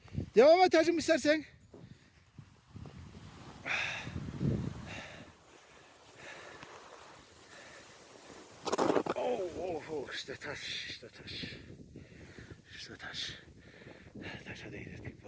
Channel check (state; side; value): identical; both; correlation 1.00